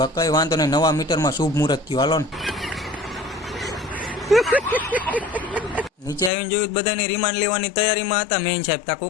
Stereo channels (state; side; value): drops out; right; at 6.3 s